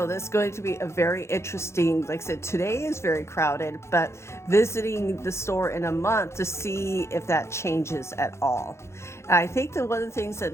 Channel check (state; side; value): late; right; 0.13 ms